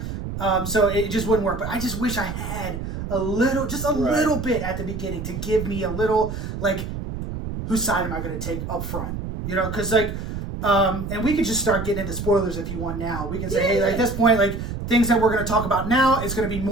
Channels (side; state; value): right; noise; rumble, 6 dB below the sound